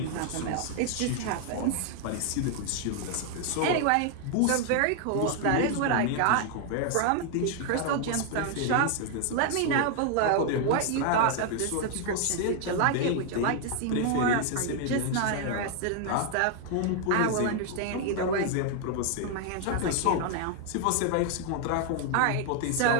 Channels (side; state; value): both; different; correlation 0.00